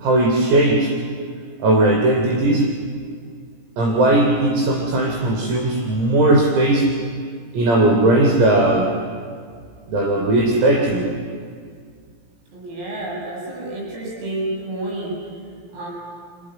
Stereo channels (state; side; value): late; left; 17 ms